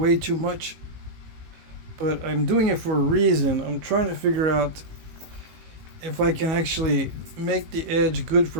too much, but I'm doing it for a reason. I'm trying to figure out if I can actually make the edge good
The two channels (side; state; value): left; late; 19 ms